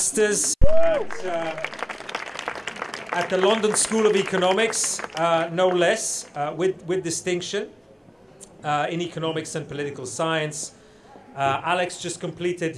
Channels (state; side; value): identical; both; correlation 1.00